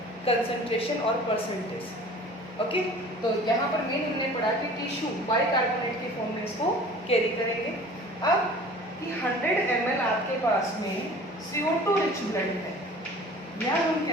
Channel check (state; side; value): normal; both; correlation 0.45